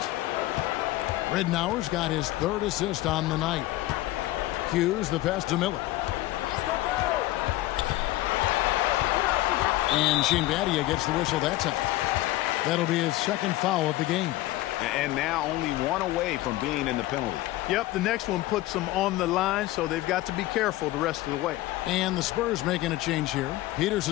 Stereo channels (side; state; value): right; quieter; 16.9 dB